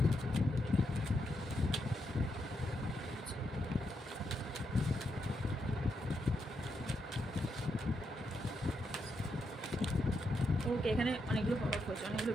Okay, এখানে অনেকগুলো পপ আপ হয়েছে, অনেকগুলো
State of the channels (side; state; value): both; normal; correlation 0.82